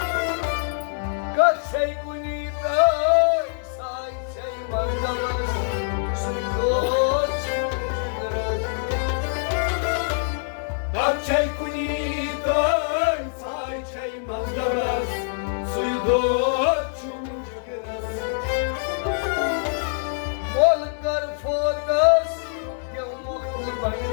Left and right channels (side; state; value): right; silent; 62 dB below the other